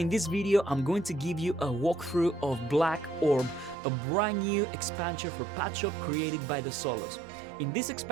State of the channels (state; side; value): drops out; left; at 3.8 s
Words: this video I'm going to give you a walkthrough of Black Orb, a brand new expansion for Padshop created by the Solos. In this